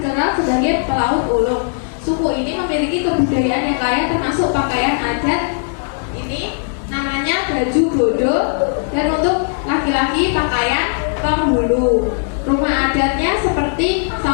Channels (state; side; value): silent; right; digital silence